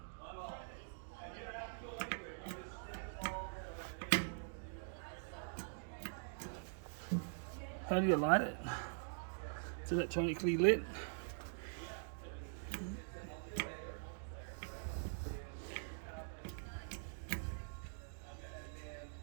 How do you light it? It's electronically lit.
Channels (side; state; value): left; silent; digital silence